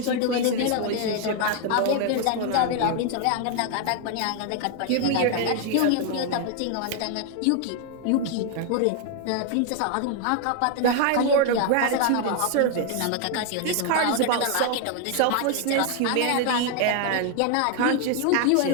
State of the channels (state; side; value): different; both; correlation 0.00